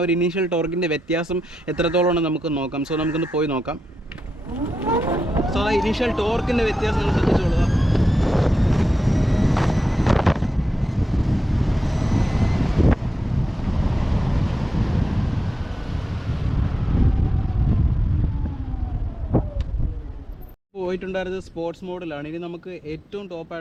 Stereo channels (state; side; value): normal; both; correlation 0.88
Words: ഒരു ഇനീഷ്യൽ ടോർക്കിൻ്റെ വ്യത്യാസം എത്രത്തോളം നമുക്ക് നോക്കാം. സോ നമുക്കൊന്ന് പോയി നോക്കാം. സോ ആ ഇനീഷ്യൽ ടോർക്കിൻ്റെ വ്യത്യാസം നമ്മൾ ശ്രദ്ധിച്ചോളുക. പോയിട്ടുണ്ടായിരുന്നത് സ്പോർട്സ് മോഡിലാണ്. ഇനി നമുക്ക് ഏറ്റവും